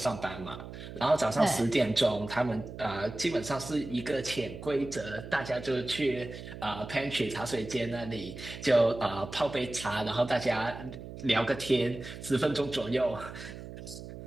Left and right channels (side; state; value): right; noise; hum, 12 dB below the sound